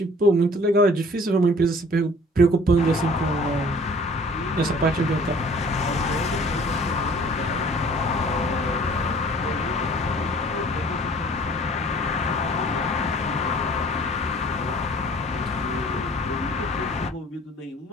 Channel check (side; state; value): both; normal; correlation 0.52